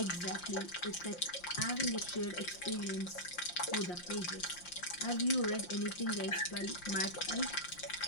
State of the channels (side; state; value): right; late; 5.7 ms